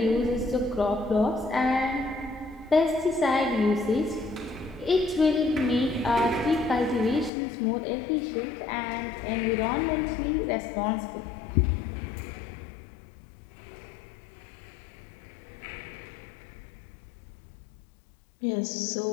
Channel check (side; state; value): right; drops out; at 7.3 s